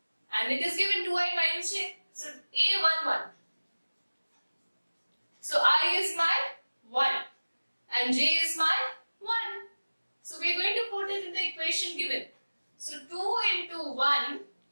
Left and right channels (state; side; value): inverted; both; correlation -1.00